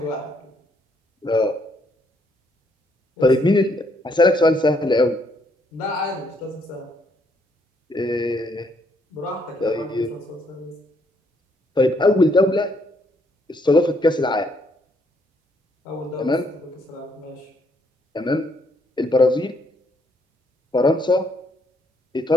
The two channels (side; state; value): both; normal; correlation 0.71